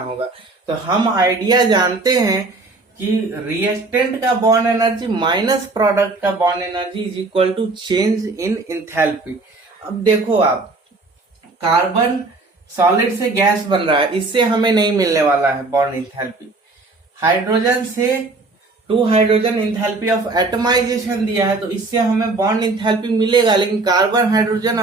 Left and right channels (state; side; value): quieter; left; 3.4 dB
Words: तो हम आइडिया जानते हैं कि रिएक्टेंट का बॉन्ड एनर्जी माइनस प्रोडक्ट का bond energy is equal to change in enthalpy. अब देखो आप, कार्बन सॉलिड से गैस बन रहा है, इससे हमें नहीं मिलने वाला है बॉन्ड इंथैल्पी। हाइड्रोजन से 2 हाइड्रोजन इंथैल्पी ऑफ एटमाइजेशन दिया है, तो इससे हमें बॉन्ड इंथैल्पी मिलेगा, लेकिन कार्बन हाइड्रोजन